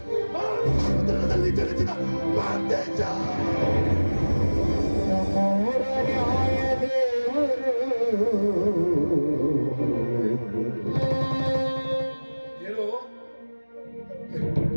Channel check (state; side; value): inverted; both; correlation -1.00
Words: ಆ ಸಮುದ್ರದಲ್ಲಿ ಚಲಿಸಿದ ಮಾಂತೇಶ. ನಮ್ಮೂರ ನ್ಯಾಯ ದೇವರು. ಏನು?